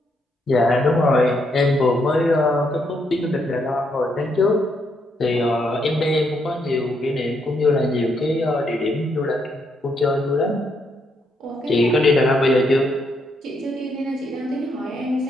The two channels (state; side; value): normal; both; correlation 0.76